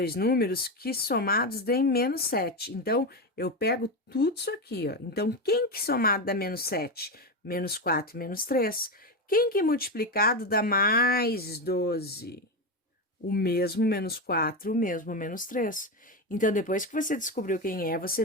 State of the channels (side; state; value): both; normal; correlation 0.15